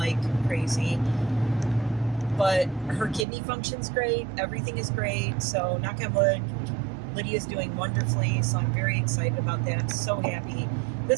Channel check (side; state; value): left; drops out; at 3.2 s